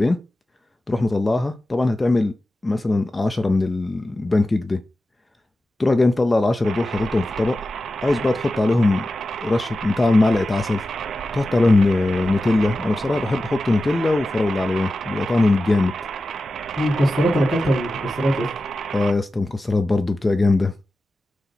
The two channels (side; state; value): both; normal; correlation 0.93